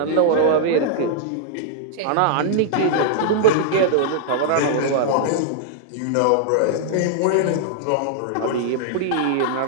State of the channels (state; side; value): different; both; correlation -0.01